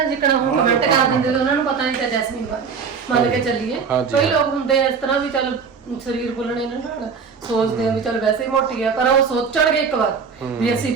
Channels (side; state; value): left; quieter; 5.9 dB